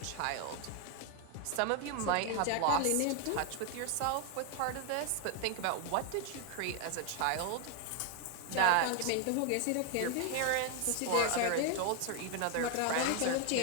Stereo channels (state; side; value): different; both; correlation 0.01